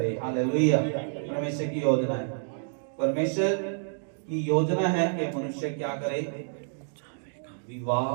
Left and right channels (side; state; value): left; silent; digital silence